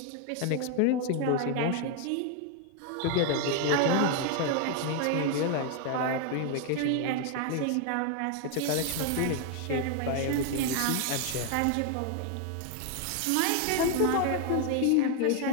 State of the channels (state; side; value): different; both; correlation 0.01